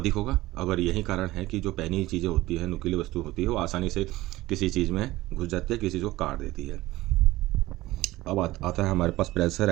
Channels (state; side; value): quieter; left; 17.7 dB